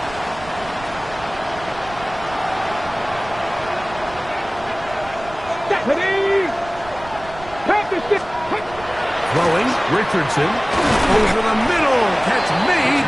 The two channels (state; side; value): noise; right; rumble, 17 dB below the sound